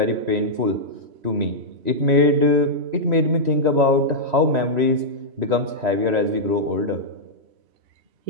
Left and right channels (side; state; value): left; late; 3.1 ms